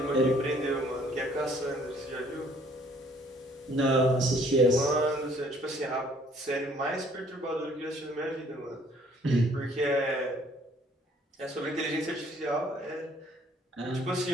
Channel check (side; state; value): both; normal; correlation 0.60